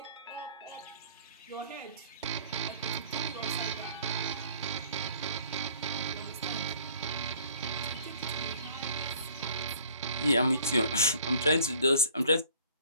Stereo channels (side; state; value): both; inverted; correlation -0.54